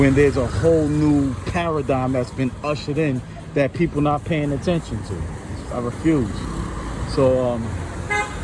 there's a whole new paradigm that's been ushered in that people not paying attention to. I refuse. So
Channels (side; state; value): both; identical; correlation 1.00